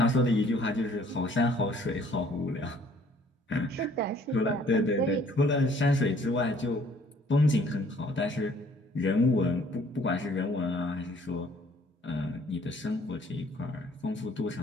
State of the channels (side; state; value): both; normal; correlation 0.58